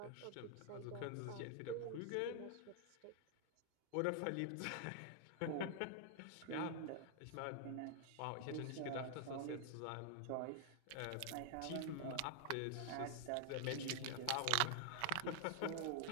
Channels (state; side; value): different; both; correlation 0.00